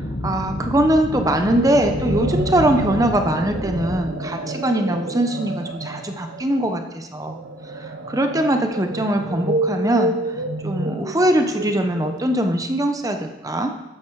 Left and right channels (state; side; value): normal; both; correlation 0.66